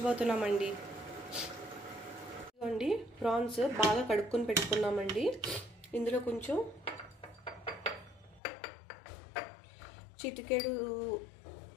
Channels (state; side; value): drops out; right; at 8.4 s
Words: ఇదిగోండి ప్రాన్స్ బాగా కడుక్కొని పెట్టుకున్నామండి ఇందులో కొంచెం చిటికెడు